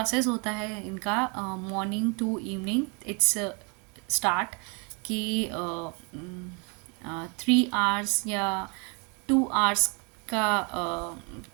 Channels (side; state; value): left; quieter; 33.7 dB